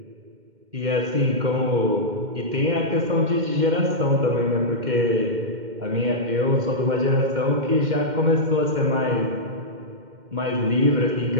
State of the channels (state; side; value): late; left; 2.1 ms